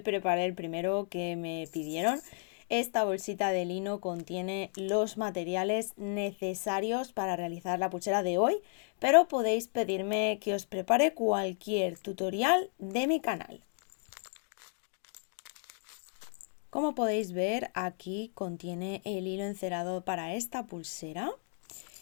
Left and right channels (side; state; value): right; silent; 56 dB below the other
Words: el primero que me pidieron. Esta bolsita de lino contiene los materiales necesarios para realizar la pulsera de hoy, pero podéis pedirme que os prepare cualquier tutorial de mi canal. Como podéis ver, aquí contiene el hilo encerado para esta pulsera.